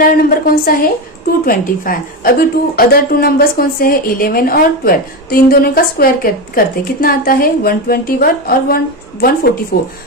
नंबर कौन सा है 225। अभी अदर टू नंबर्स कौन से है 11 और 12, तो इन दोनों का स्क्वायर करते कितना आता है 121 और 144,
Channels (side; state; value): both; normal; correlation 0.16